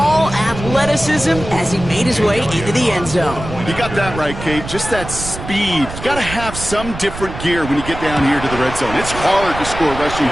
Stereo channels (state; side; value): noise; right; rumble, 10 dB below the sound